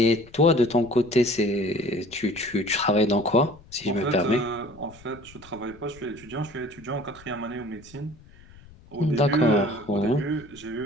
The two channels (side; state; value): left; noise; rumble, 23 dB below the sound